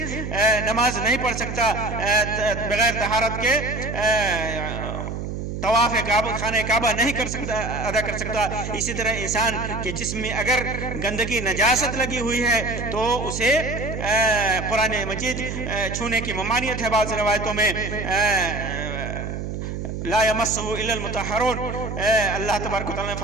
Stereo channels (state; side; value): noise; right; hum, 5 dB below the sound